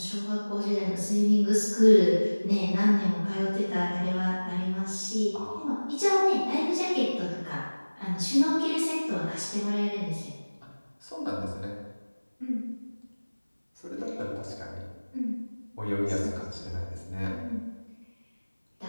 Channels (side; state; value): both; inverted; correlation -1.00